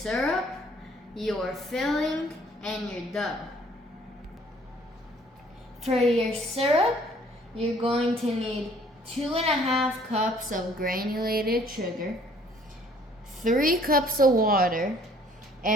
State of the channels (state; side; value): normal; both; correlation 0.58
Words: your filling, and your dough. For your syrup, you're going to need 2.5 cups of granulated sugar, 3 cups of water,